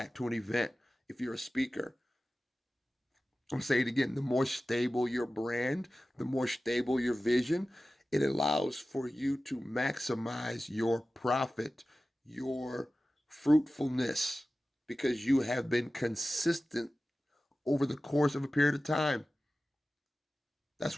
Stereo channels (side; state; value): both; normal; correlation 0.95